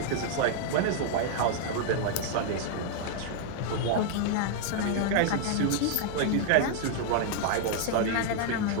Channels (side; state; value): both; different; correlation 0.00